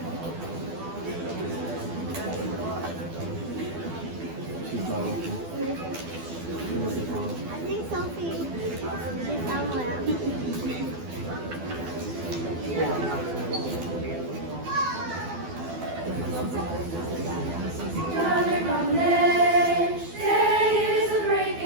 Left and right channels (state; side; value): late; left; 12 ms